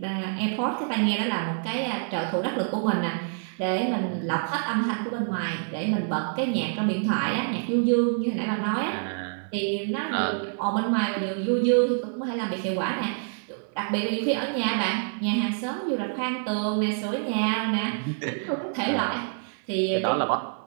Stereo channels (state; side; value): silent; left; 60 dB below the other